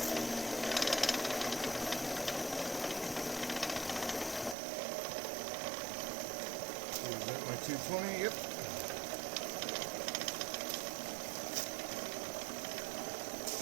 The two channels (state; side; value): drops out; left; at 4.5 s